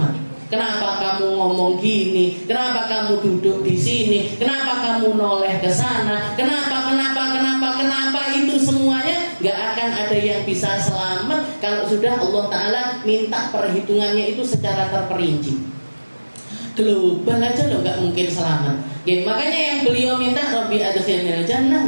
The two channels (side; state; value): both; inverted; correlation -1.00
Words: Kenapa kamu ngomong gini? Kenapa kamu duduk di sini? Kenapa kamu noleh ke sana? Kenapa itu semuanya gak akan ada yang bisa selamat kalau sudah Allah Ta'ala minta perhitungannya itu secara terperinci. Global aja loh gak mungkin selamat. Makanya yang beliau minta Rabbi adkhilnil